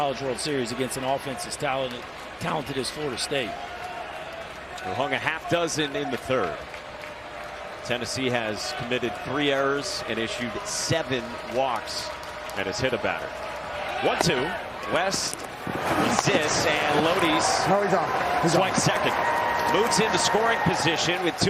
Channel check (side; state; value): both; identical; correlation 1.00